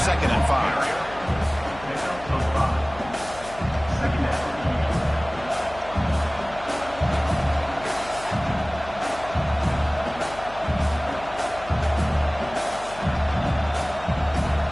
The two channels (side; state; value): left; noise; hum, 16 dB below the sound